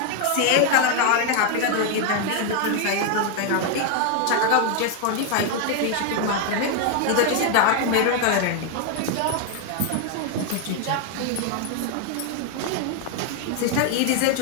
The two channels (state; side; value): different; both; correlation 0.01